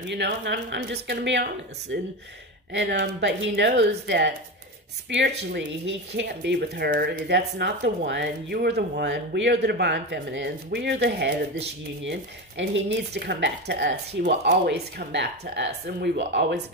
know, and I'm just going to be honest. And but he knows that spiritually, he can't be with her. That's not the one. You are the one. We are the divine feminines. We are the head of this union, and he needs to come back to us. He will always come back to us, and we will always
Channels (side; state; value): both; normal; correlation 0.20